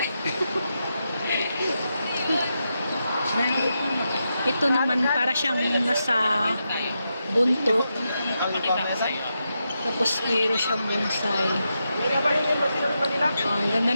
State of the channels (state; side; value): inverted; both; correlation -0.86